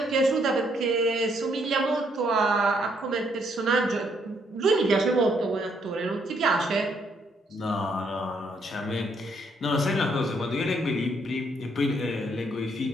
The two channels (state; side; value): normal; both; correlation 0.71